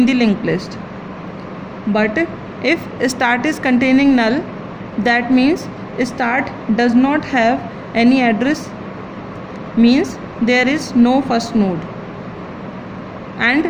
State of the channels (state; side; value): identical; both; correlation 1.00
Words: the linked list. But if start is containing null, that means start does not have any address, means there is no first node.